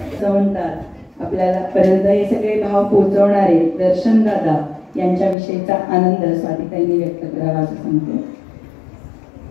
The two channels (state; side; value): drops out; right; at 5.4 s